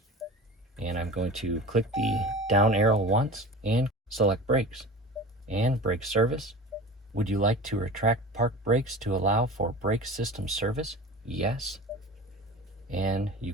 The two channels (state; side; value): normal; both; correlation 0.35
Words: And I'm going to click the down arrow once and select Brakes and Brake Service. Would you like to retract park brakes to allow for brake system service? Yes. And you